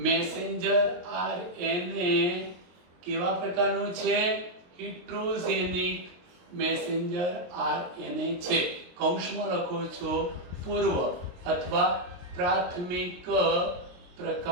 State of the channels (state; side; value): late; left; 23 ms